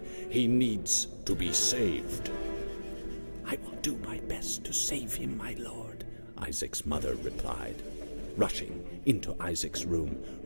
He needs to be saved." "I will do my best to save him, my lord," Isaac's mother replied, rushing into Isaac's room,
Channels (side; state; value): both; inverted; correlation -1.00